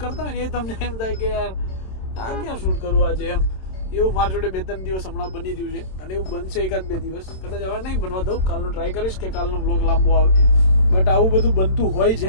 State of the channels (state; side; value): late; right; 27 ms